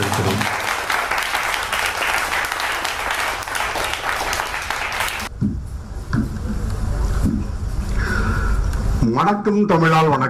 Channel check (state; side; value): identical; both; correlation 1.00